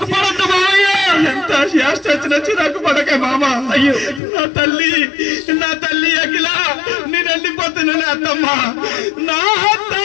పడద్దు మామయ్య, ఎంత యాష్ట వచ్చి నాకు పడకే మామ. అయ్యో నా తల్లి అఖిల నేను వెళ్ళిపోతున్నానే అత్తమ్మ. నా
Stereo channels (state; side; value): drops out; right; at 4.2 s